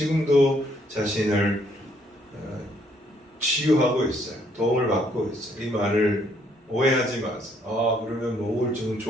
자신을 치유하고 있어요. 도움을 받고 있어요. 이 말을 오해하지 마세요. 그러면 뭐 우울증은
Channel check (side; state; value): both; normal; correlation 0.68